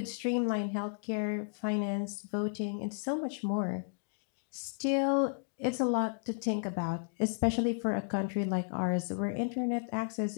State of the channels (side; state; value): right; silent; digital silence